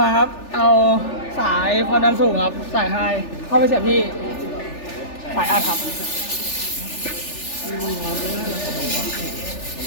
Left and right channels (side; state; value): right; late; 3.4 ms